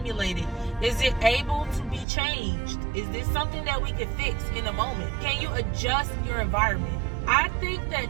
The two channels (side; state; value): left; drops out; at 2.1 s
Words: Is it able to be changed? Is this something that we could fix in a moment? Can you adjust your environment? I think